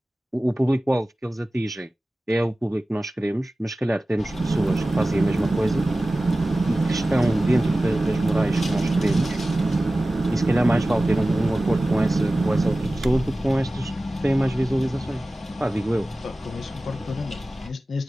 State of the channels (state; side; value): normal; both; correlation 0.96